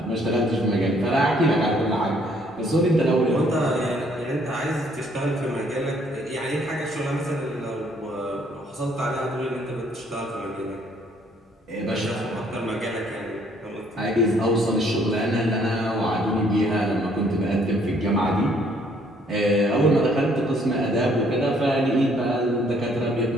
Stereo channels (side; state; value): both; normal; correlation 0.64